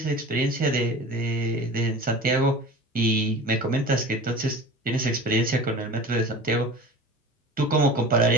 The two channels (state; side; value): normal; both; correlation 0.37